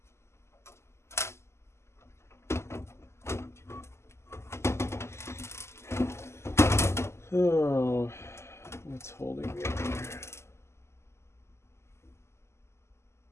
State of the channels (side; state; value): right; late; 0.13 ms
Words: Oh, what's holding me up here?